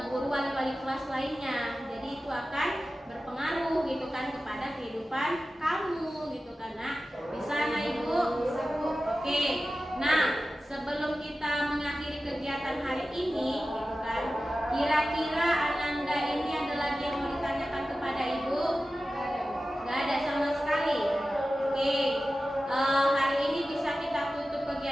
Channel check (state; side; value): normal; both; correlation 0.94